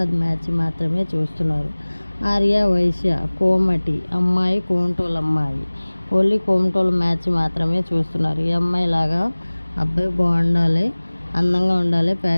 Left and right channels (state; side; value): inverted; both; correlation -1.00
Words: మ్యాచ్ మాత్రమే చూస్తున్నారు. ఆర్య వైశ్య, కోమటి అమ్మాయి, కోమటోలు అమ్మాయి. ఓన్లీ కోమటోలు మ్యాచ్ మాత్రమే చూస్తున్నారు. ఈ అమ్మాయి లాగా అబ్బాయి బాగుండాలి, అందంగా ఉండాలి,